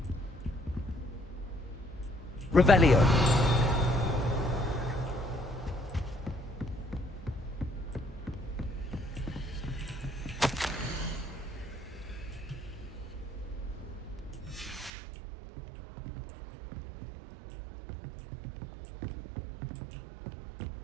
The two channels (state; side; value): drops out; left; at 14.9 s